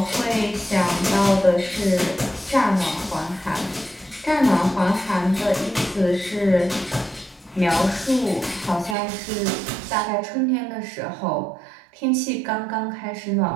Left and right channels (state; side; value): drops out; left; at 9.0 s